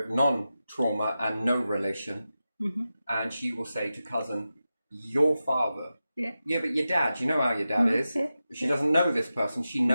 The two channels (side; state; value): both; inverted; correlation -0.92